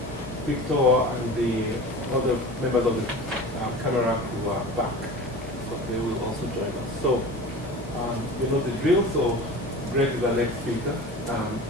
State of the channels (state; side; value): normal; both; correlation 0.35